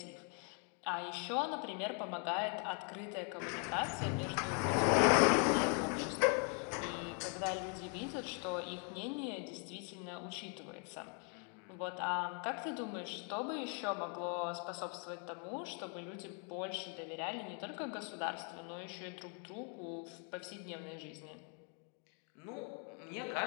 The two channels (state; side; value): quieter; right; 39.8 dB